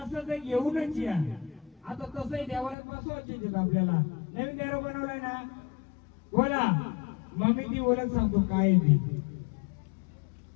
तर घेऊनच या. आता तसंही देवाला बसवायचे आपल्याला. नवीन देव बनवलाय ना, बोला मग मी ती ओळख सांगतो काय ती.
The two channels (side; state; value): right; drops out; at 2.8 s